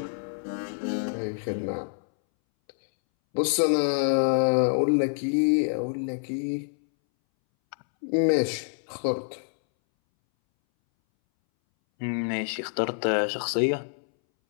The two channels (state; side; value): silent; right; 60 dB below the other